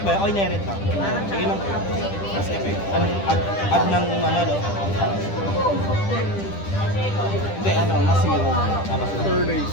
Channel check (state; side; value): late; right; 10 ms